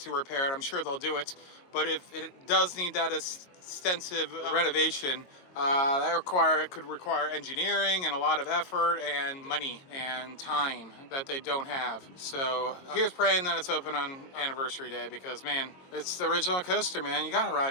repair it, I'm sure they'll do it. But if it does need that extensive renovation, that could require engineering and a lot of effort and money and time that they don't have. So here's praying that it's open on anniversary day, because man, it's the original coaster, man. You gotta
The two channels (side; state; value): right; late; 22 ms